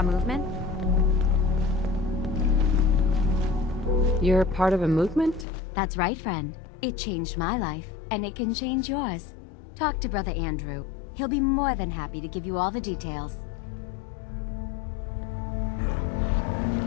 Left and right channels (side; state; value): right; drops out; at 5.5 s